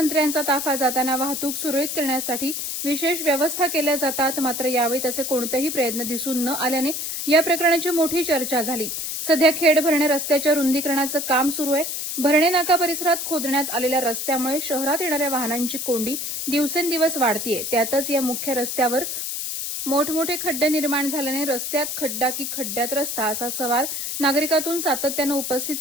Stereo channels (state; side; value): noise; left; hiss, 4 dB below the sound